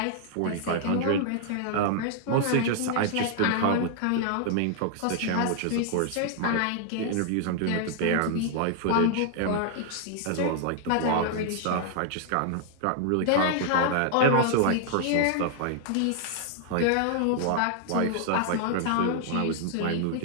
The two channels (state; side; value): different; both; correlation 0.00